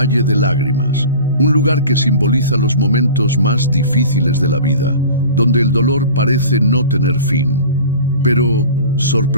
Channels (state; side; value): inverted; both; correlation -0.39